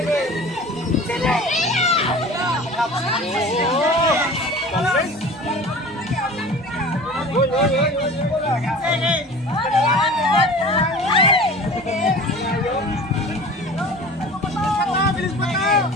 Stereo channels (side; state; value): both; normal; correlation 0.40